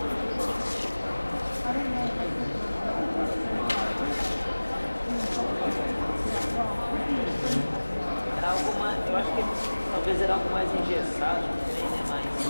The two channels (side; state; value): both; inverted; correlation -1.00